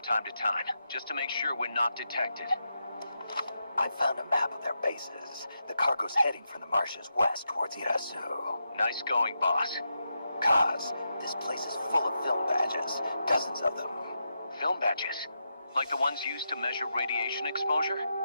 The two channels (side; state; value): both; inverted; correlation -0.86